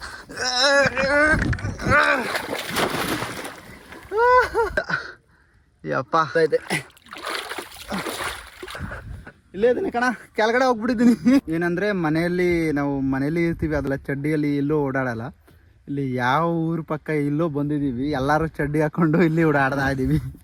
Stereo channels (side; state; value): both; identical; correlation 1.00